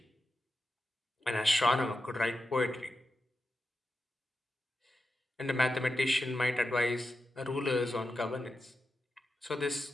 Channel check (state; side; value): normal; both; correlation 0.90